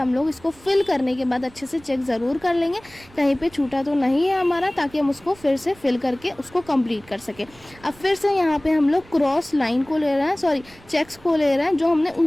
लोग इसको फिल करने के बाद अच्छे से चेक ज़रूर कर लेंगे कहीं पर छूटा तो नहीं है हमारा, ताकि हम उसको फिर से फिल करके उसको कंप्लीट कर सकें। अब फिर से यहाँ पे हम लोग क्रॉस लाइन को ले रहे हैं, सॉरी चेक्स को ले रहे हैं जो हमने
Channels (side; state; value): right; noise; rumble, 25 dB below the sound